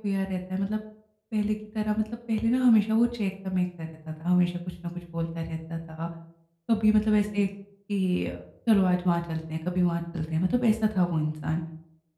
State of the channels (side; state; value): both; identical; correlation 1.00